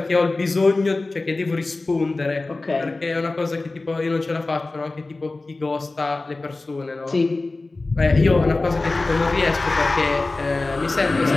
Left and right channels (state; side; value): quieter; right; 3.3 dB